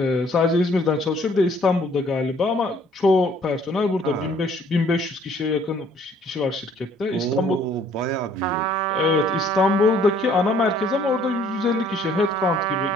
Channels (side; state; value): both; normal; correlation 0.59